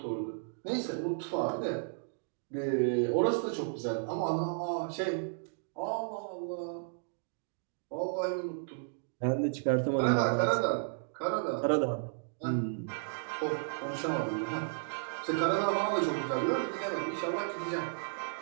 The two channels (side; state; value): left; silent; digital silence